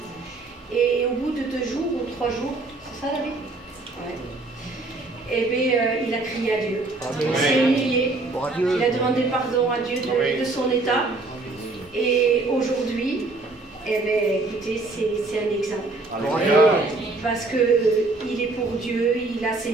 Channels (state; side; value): quieter; left; 3.3 dB